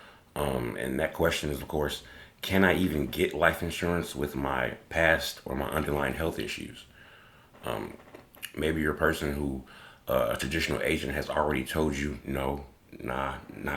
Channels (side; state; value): both; identical; correlation 1.00